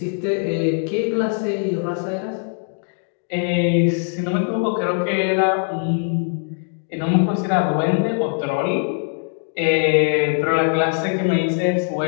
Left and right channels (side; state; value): right; silent; 57 dB below the other